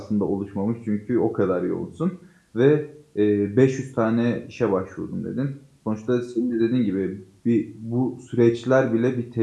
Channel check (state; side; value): identical; both; correlation 1.00